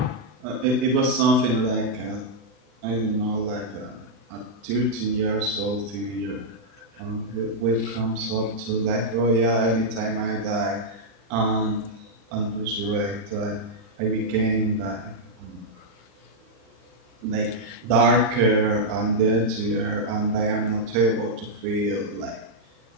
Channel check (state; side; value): late; left; 40 ms